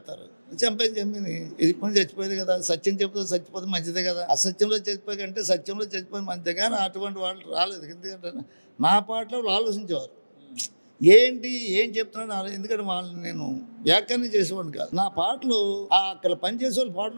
చంపేది ఇప్పుడు చచ్చిపోయేది కదా. సత్యం చెప్తే చచ్చిపోతే మంచిదే కదా. అసత్యంలో చచ్చిపోయి కంటే సత్యంలో చచ్చిపోయి మంచిదే. కానీ అటువంటి వాళ్ళు రాలేదు. ఎందుకంటే నా పాటలో వాళ్ళు ఆలోచించేవారు, ఏం చెప్తున్నాడు. ఎందుకంటే వాళ్ళని నేను వ్యాఖ్యానం చేసేవాడిని కాదు. నా పాటలు అక్కడ పనిచేసే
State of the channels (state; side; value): inverted; both; correlation -1.00